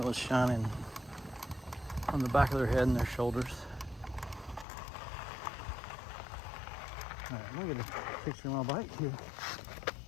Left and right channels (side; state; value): right; drops out; at 4.7 s